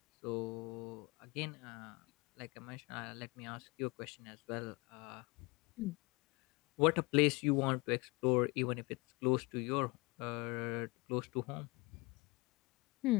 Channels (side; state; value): right; quieter; 25.6 dB